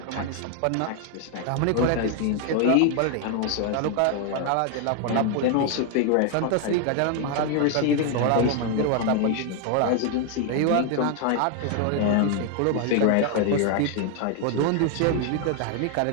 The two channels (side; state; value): both; different; correlation 0.00